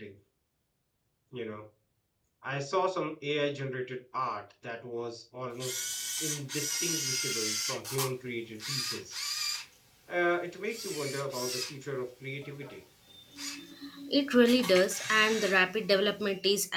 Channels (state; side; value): identical; both; correlation 1.00